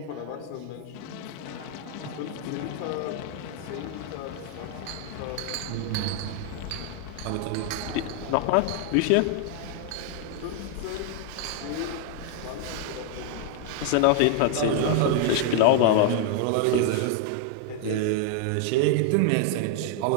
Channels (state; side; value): different; both; correlation 0.00